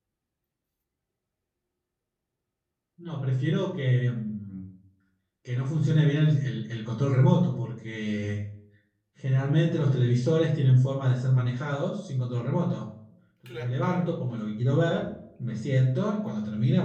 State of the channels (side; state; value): both; identical; correlation 1.00